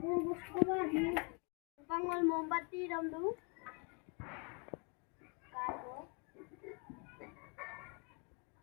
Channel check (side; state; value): right; quieter; 34.9 dB